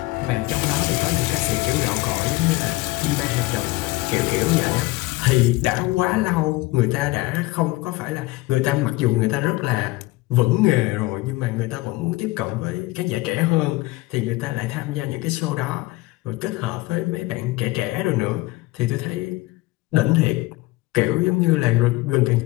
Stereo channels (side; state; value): right; quieter; 20.6 dB